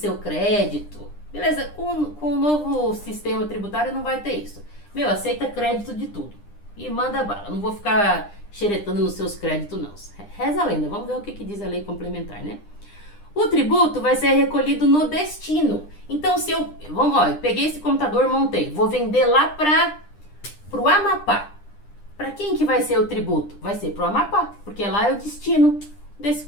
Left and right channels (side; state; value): right; late; 9.9 ms